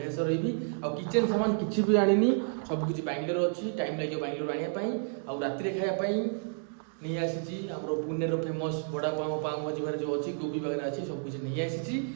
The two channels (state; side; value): silent; left; digital silence